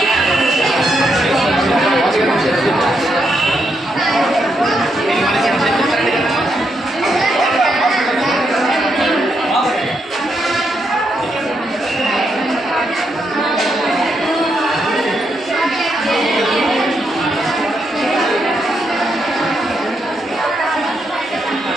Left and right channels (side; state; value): both; normal; correlation 0.80